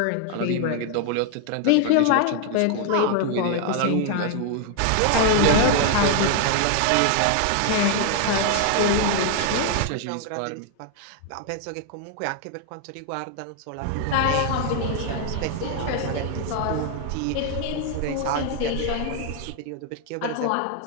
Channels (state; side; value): different; both; correlation 0.00